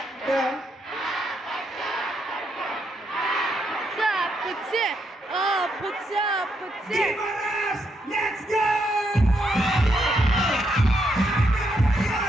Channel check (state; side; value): normal; both; correlation 0.78